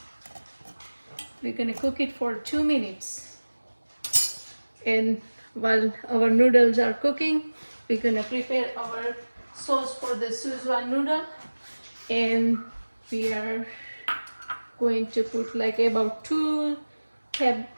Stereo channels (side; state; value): both; inverted; correlation -1.00